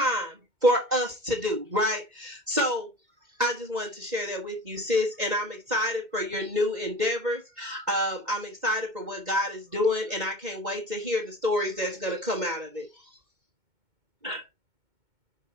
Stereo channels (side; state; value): left; late; 2.2 ms